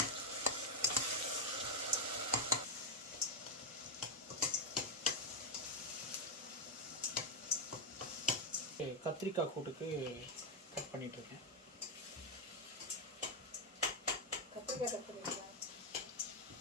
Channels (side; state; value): both; normal; correlation 0.04